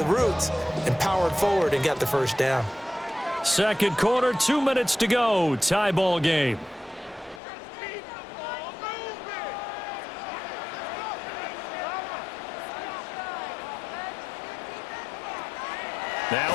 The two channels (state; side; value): drops out; right; at 7.4 s